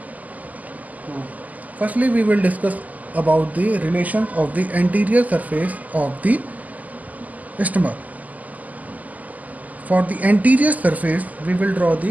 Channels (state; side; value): late; left; 0.078 ms